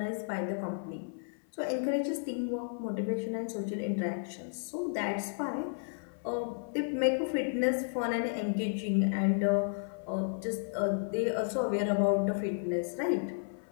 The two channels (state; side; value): silent; right; 56 dB below the other